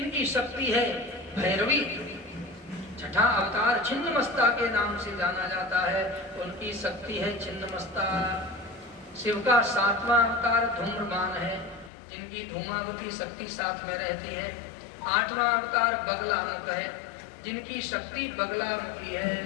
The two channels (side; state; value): right; drops out; at 11.9 s